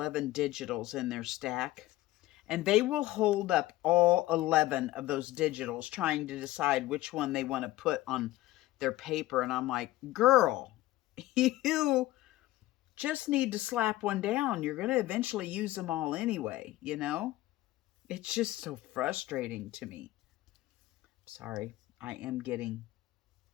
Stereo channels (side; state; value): right; quieter; 16.9 dB